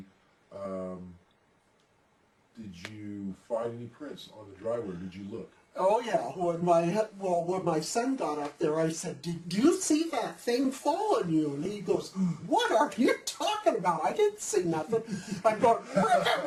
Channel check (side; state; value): both; identical; correlation 1.00